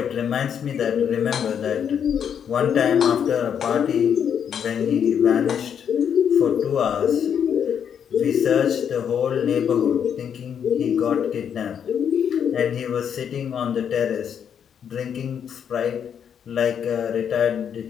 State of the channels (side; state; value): right; quieter; 8.2 dB